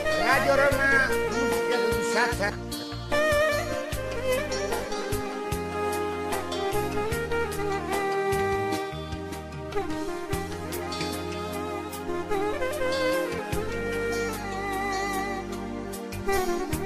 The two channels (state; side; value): identical; both; correlation 1.00